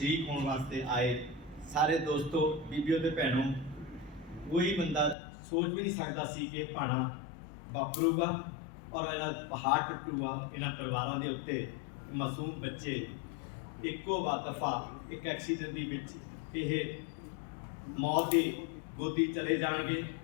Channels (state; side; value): drops out; right; at 5.2 s